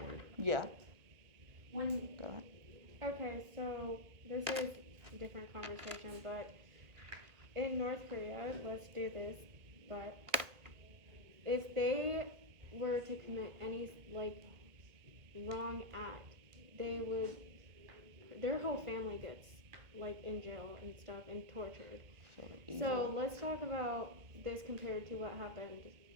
Yeah. When, Go ahead. Okay, so this is a different conversation, but in North Korea, let's do this, but if they were to commit any, like, wrong act, they would, their whole family gets, like, in jail and stuff and tortured. So let's talk about this compared to what happened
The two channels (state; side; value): late; left; 1.9 ms